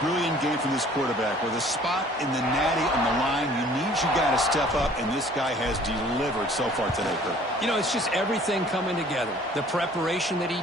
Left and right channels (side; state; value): both; normal; correlation 0.53